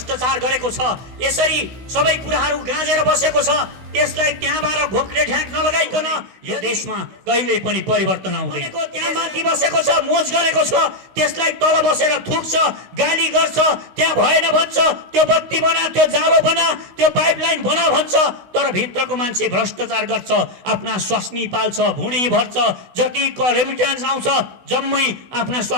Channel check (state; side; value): late; left; 16 ms